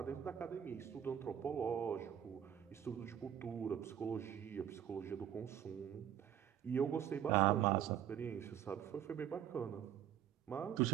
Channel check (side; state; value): left; quieter; 9.8 dB